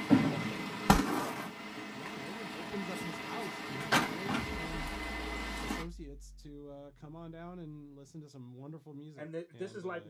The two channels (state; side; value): identical; both; correlation 1.00